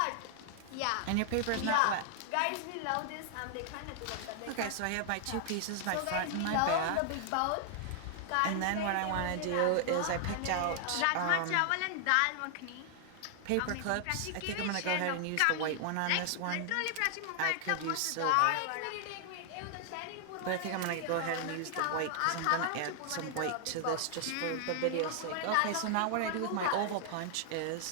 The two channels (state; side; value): different; both; correlation 0.00